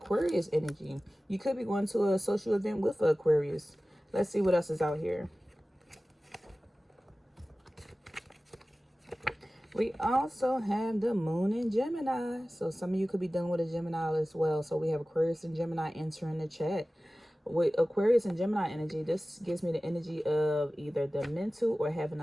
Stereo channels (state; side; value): normal; both; correlation 0.97